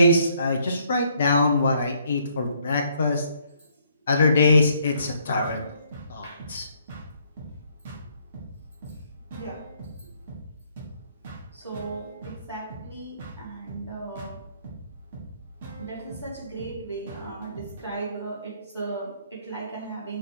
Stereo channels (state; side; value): inverted; both; correlation -0.67